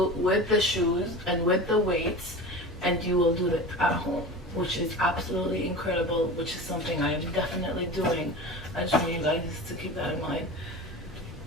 with the shoes and with the weights, and you will do it at home, which is absolutely incredible, which is something I am definitely doing. I just want you guys to keep that in mind.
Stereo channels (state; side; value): normal; both; correlation 0.32